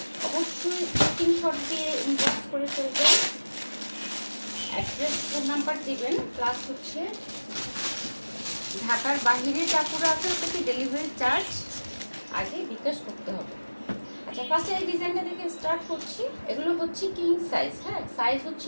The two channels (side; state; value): both; inverted; correlation -1.00